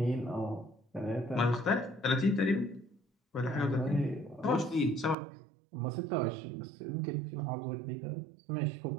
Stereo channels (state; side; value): drops out; left; at 5.2 s